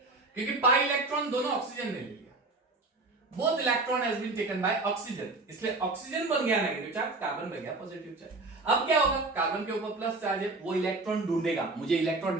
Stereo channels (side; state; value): left; quieter; 3.3 dB